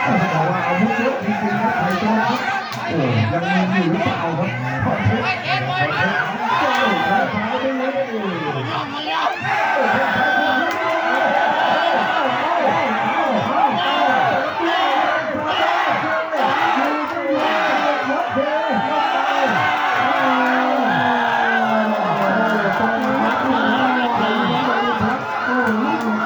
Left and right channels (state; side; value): identical; both; correlation 1.00